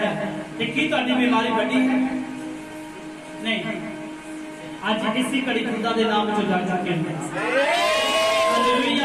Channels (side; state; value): both; identical; correlation 1.00